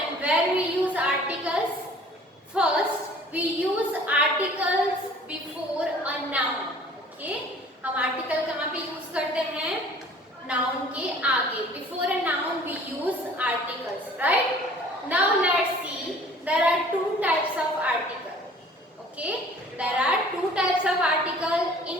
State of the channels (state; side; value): normal; both; correlation 0.50